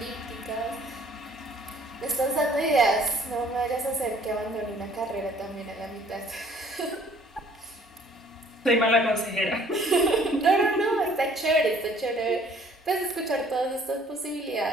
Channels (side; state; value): both; normal; correlation 0.57